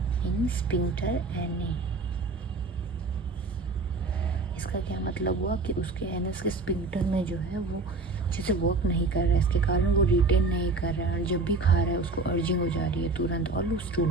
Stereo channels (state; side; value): quieter; left; 3.5 dB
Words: in sphincter ani. इसका क्या मतलब हुआ कि उसके एनएस के स्पिंक्टर में जो है वो अच्छे से वर्क नहीं कर रहा है, इसके कारण वो रिटेन नहीं कर रहा है और जब भी खा रहा है उसको अर्जिंग हो जा रही है तुरंत और लूज स्टूल